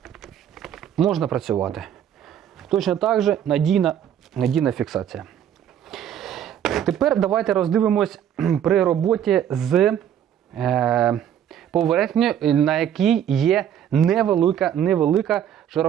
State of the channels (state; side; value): quieter; left; 9.8 dB